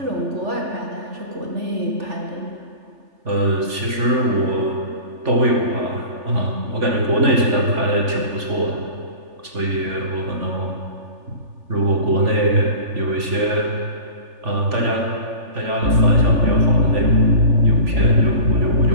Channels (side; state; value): left; late; 3.5 ms